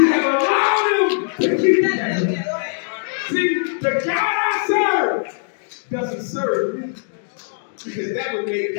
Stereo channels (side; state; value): right; silent; digital silence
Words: have allowed them to keep it that way. See, the God I serve doesn't serve me, because that would make